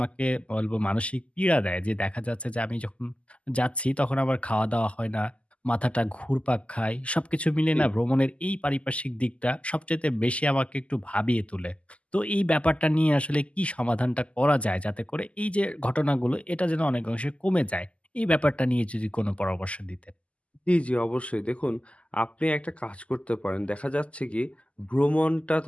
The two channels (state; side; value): late; right; 0.061 ms